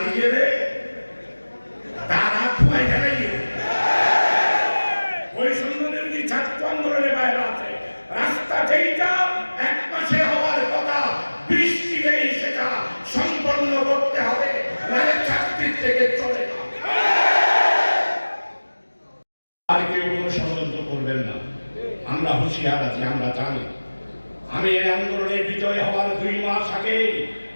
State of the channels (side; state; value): both; inverted; correlation -1.00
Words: গেলে তারা খুয়াই গেলে ওই সম্বন্ধে ছাত্র আন্দোলনের বাইরে আছে। রাস্তা যেইটা 1 মাসে হওয়ার কথা, বৃষ্টি নেই, সেটা সম্পন্ন করতে হবে, নাহলে চাকরির থেকে চলে না। আর কেউ কোনো ষড়যন্ত্র করবেন না, আমরা হুঁশিয়ার আছি, আমরা জানি। আমি এই আন্দোলনে বিজয় হওয়ার 2 মাস আগে